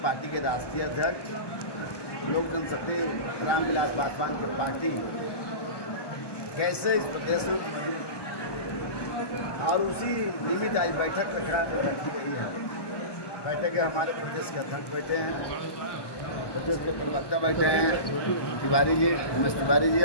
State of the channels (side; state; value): right; late; 1.2 ms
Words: पार्टी के राष्ट्रीय अध्यक्ष लोक जनशक्ति रामविलास पासवान की पार्टी कैसे इस प्रदेश में और उसी निमित्त आज बैठक रखी गई है। बैठक के हमारे प्रदेश के अध्यक्ष बैठे हैं, प्रदेश के प्रवक्ता बैठे हैं, तिवारी जी, उमेश तिवारी जी